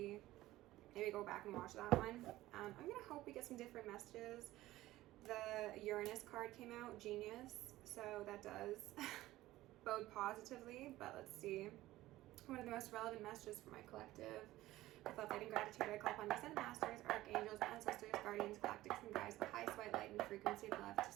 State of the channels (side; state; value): left; quieter; 16.4 dB